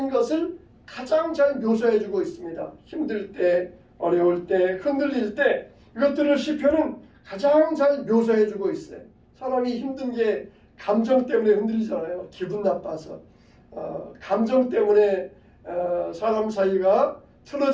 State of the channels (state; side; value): identical; both; correlation 1.00